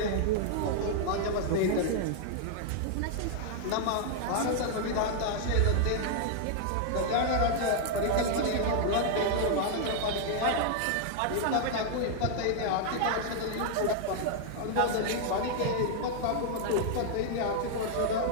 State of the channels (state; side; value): different; both; correlation -0.01